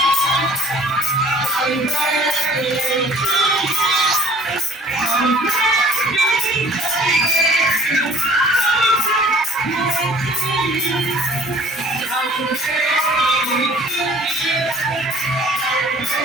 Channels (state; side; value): normal; both; correlation 0.51